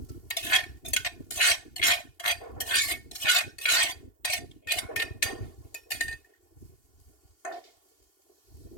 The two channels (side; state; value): right; late; 2.8 ms